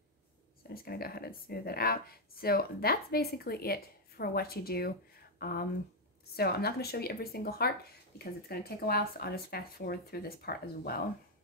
So I'm just gonna go ahead and smooth it out. So that's basically it for what you do. So I'm not gonna show you every single heart because it's gonna take a while, so I'll just fast forward through this part as well.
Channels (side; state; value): both; normal; correlation 0.01